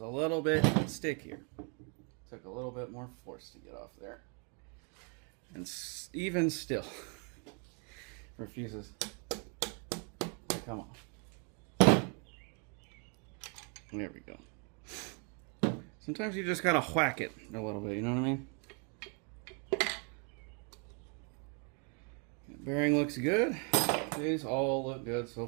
a little bit stickier. Took a little bit more force to get off there. And even still, refuses to come off. There we go. Sometimes you just gotta whack it a little bit, you know what I mean? Bearing looks good. These all look good so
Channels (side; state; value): left; quieter; 37.6 dB